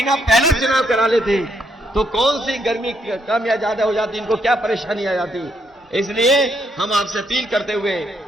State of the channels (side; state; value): both; normal; correlation 0.75